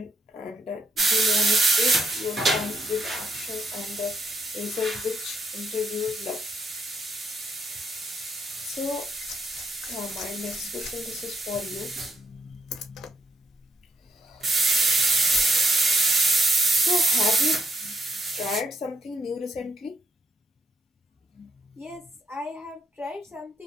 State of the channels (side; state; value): both; normal; correlation 0.74